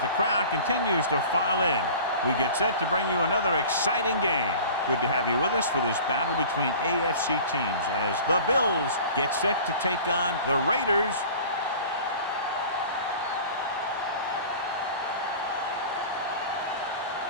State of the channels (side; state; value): both; inverted; correlation -0.41